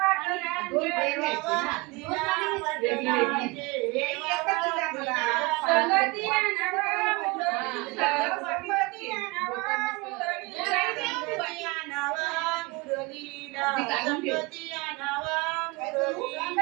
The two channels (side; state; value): left; quieter; 25.2 dB